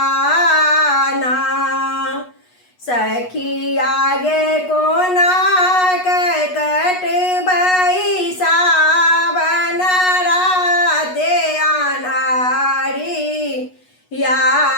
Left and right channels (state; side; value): late; right; 8.2 ms